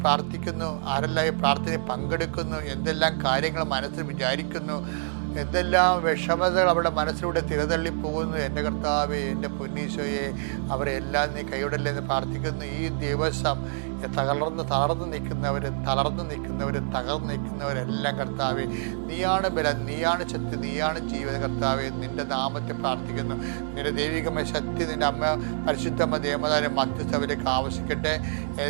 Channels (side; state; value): left; silent; digital silence